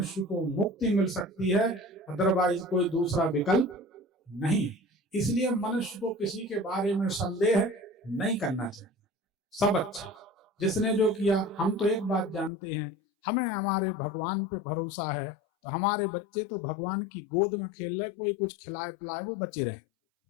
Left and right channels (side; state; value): right; drops out; at 12.5 s